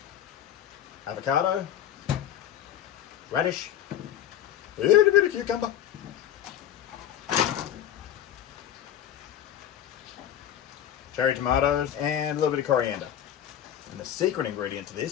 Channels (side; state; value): right; quieter; 10.7 dB